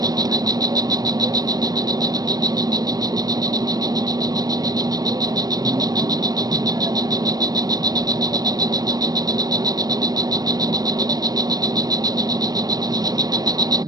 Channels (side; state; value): left; late; 0.19 ms